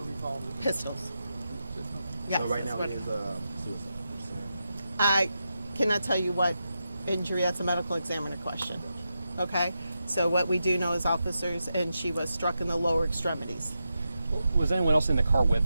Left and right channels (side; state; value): both; inverted; correlation -0.88